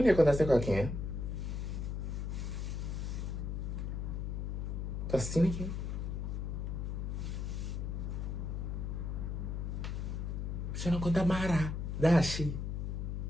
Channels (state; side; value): noise; left; hum, 2 dB below the sound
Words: é que acontece com quem? Tá assim aqui. Você não conta Mara, Dashi.